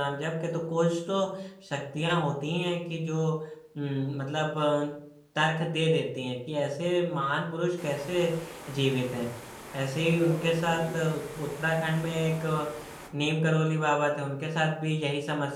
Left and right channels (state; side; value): identical; both; correlation 1.00